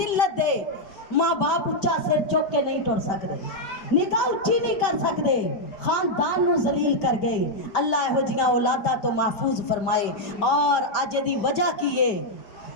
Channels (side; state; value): right; late; 5.2 ms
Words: दे। माँ बाप उच्चा सिर चुक के नहीं टुर सकते, निगाह उच्ची नहीं कर सकते, खानदान नू जलील कर गए। अल्लाह इहो जिहियां औलादा तो महफूज फरमाए। और अज दी वजह की है,